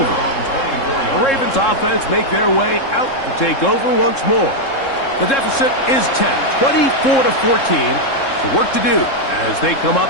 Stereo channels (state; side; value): late; right; 3.7 ms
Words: The Ravens offense make their way out to take over once more. The deficit is 10, 24-14. So work to do as they come